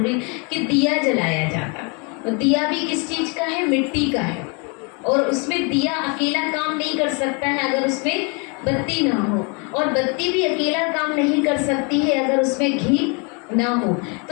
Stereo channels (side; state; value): right; quieter; 33.4 dB